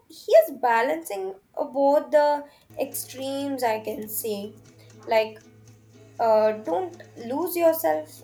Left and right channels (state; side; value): identical; both; correlation 1.00